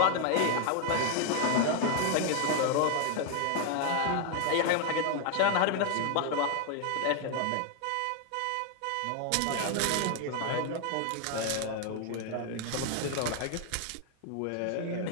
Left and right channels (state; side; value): different; both; correlation 0.00